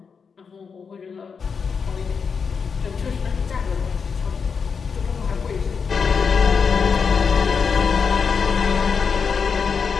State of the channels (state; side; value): quieter; right; 5.8 dB